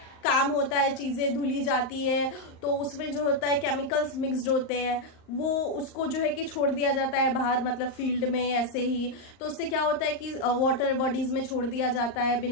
काम होता है, चीजें धुली जाती है, तो उसमें जो होता है केमिकल्स मिक्स्ड होते हैं, वो उसको जो है कि छोड़ दिया जाता है बाहर, मतलब फील्ड में ऐसे ही। तो उससे क्या होता है कि वाटर बॉडीज में छोड़ दिया जाता है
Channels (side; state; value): right; late; 38 ms